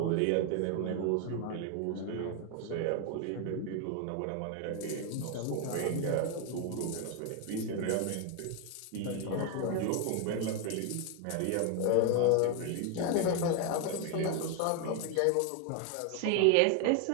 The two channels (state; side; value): different; both; correlation 0.01